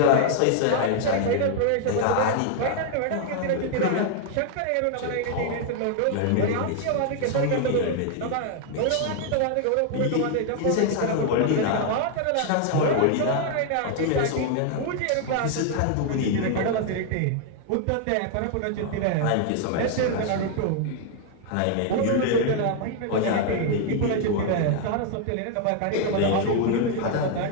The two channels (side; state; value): both; different; correlation 0.00